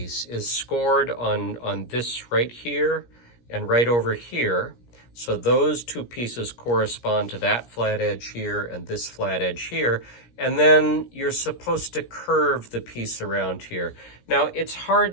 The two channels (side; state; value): right; late; 17 ms